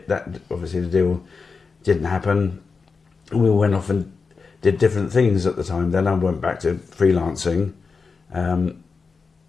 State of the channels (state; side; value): quieter; right; 4.8 dB